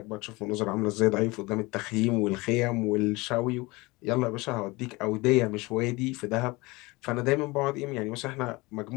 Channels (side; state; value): right; quieter; 23.2 dB